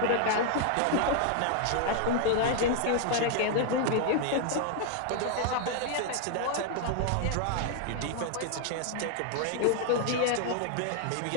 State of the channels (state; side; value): different; both; correlation 0.00